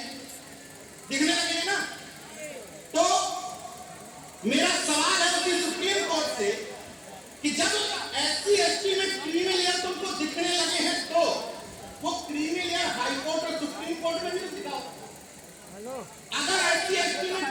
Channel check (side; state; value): both; identical; correlation 1.00